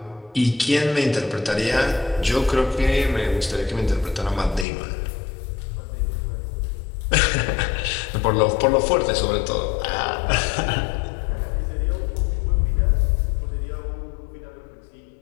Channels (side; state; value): right; drops out; at 4.7 s